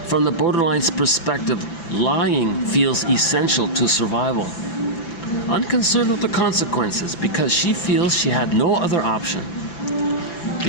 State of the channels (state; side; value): late; right; 5.9 ms